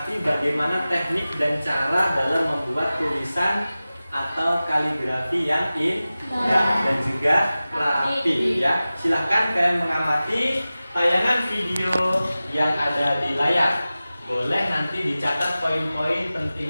bagaimana teknik dan cara dalam membuat tulisan atau kaligrafi yang indah dan juga rapi ya. Silahkan kalian mengamati tayangan video yang ada di layar. Boleh nanti dicatat poin-poin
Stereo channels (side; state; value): both; inverted; correlation -0.96